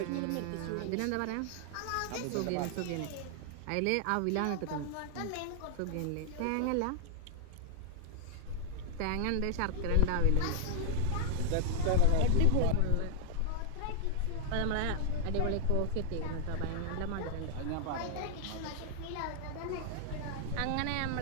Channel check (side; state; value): both; different; correlation 0.00